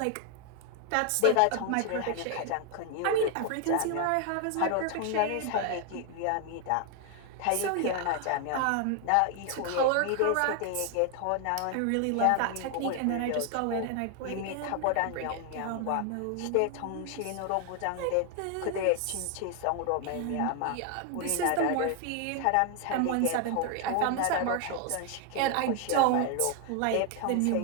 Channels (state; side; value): different; both; correlation 0.00